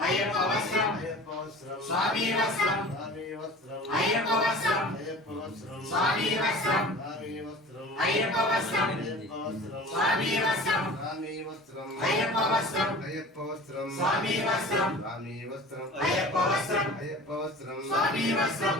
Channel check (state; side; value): normal; both; correlation 0.41